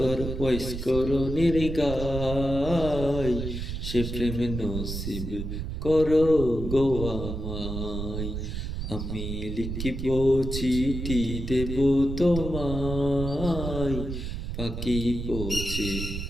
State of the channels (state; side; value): noise; right; rumble, 5 dB below the sound